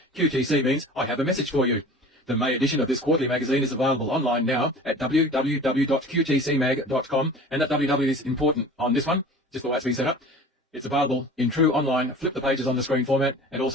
QTC means I have a message for you. The May edition of this quarterly magazine is available online now at www.qtcmag.com, and that www is important on this one, just the way it's been set up. It's available in true online, flip the pages on the screen format, and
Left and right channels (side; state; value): both; normal; correlation 0.41